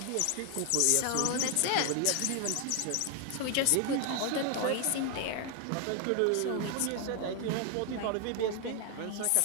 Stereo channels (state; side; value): different; both; correlation 0.00